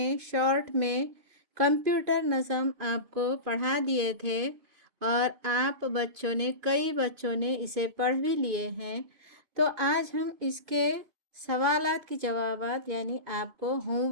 शॉर्ट में कंप्यूटर नज़म आपको पढ़ा दिए थे और कई बच्चों ने इसे पढ़ भी लिए हैं। तो आज हम इसके सवालात की जवाबात यानी आपको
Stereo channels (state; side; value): late; left; 2.5 ms